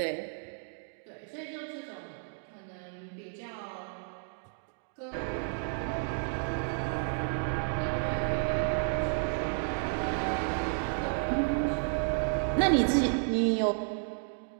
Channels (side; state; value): left; silent; digital silence